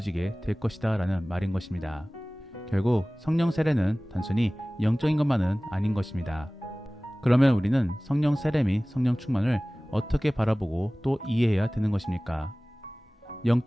될 것이다 라는 말인 것입니다. 결국 성령 세례는 단순히 영적인 것만은 아닌 것입니다. 그러면 우리는 성령 세례 및 성령 충만을 어떻게 바라보고 또 이해해야 되는 것입니까?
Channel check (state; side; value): normal; both; correlation 0.98